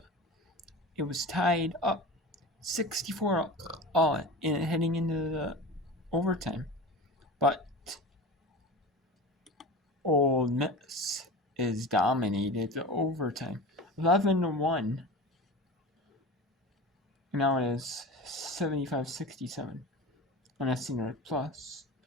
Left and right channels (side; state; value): both; normal; correlation 0.32